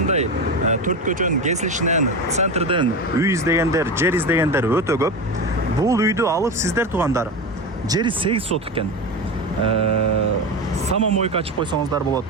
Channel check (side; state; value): both; normal; correlation 0.22